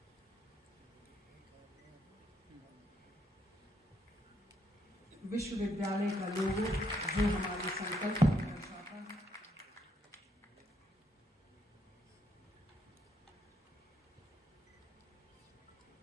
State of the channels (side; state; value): both; normal; correlation 0.74